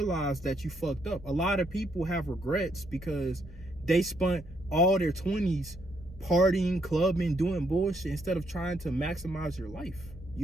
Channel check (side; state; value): both; normal; correlation 0.74